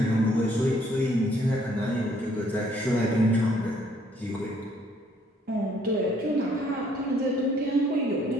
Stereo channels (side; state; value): both; normal; correlation 0.64